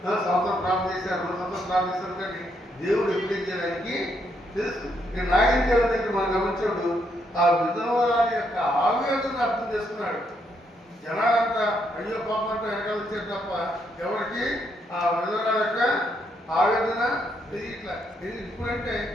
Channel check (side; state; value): both; normal; correlation 0.75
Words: సంవత్సరం ప్రార్థన చేశారు, 2 సంవత్సరం ప్రార్థన చేస్తారు, కానీ దేవుడు ఎప్పుడు చేయడానికి తెలుసు. ఇక్కడ నాయన దేవుడి దగ్గర మనం గమనించాడు, ఆ విధవరాలి యొక్క ఆవేదన అర్థం చేసుకున్నాడు. జనాలంతా అయ్యో పాపం అంతా వెనకాల వచ్చారు తప్ప ఎవరికి ఆ విధవరాలి యొక్క ఆవేదన తెలియట్లా. ఇప్పుడంటే